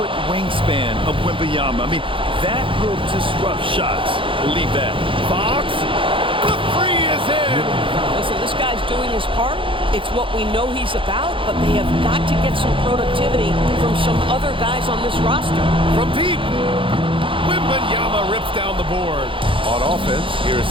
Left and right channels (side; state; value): left; late; 0.25 ms